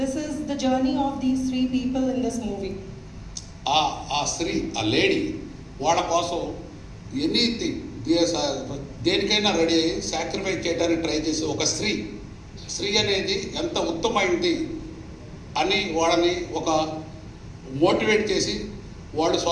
the journey of these three people in this movie. ఆ స్త్రీ, ఆ lady వాళ్ళ కోసం anything దేనికైనా ready అయ్యి sacrifice చేయడానికి try చేసే ఒక స్త్రీ అనేది ఎంత ఉత్తమైంది అని వాళ్ళని ఒక మోటివేట్ చేసి వాళ్ళు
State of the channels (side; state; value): both; identical; correlation 1.00